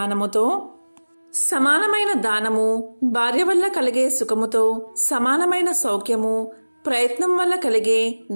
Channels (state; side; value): inverted; both; correlation -1.00